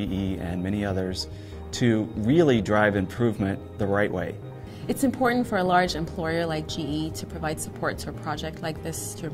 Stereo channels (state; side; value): identical; both; correlation 1.00